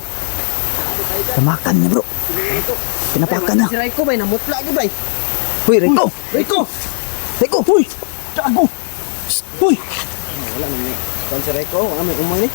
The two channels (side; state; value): right; silent; digital silence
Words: Tamakan niya bro. Pinapakan na. Si Reko ba? Namutla ka ba? Huy Raiko! Reko! Raiko! Huy! Gago! Huy! Wala naman. Kan si Reko, wala may umay ni.